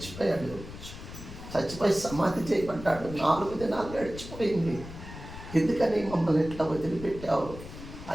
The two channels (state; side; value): noise; left; rumble, 12 dB below the sound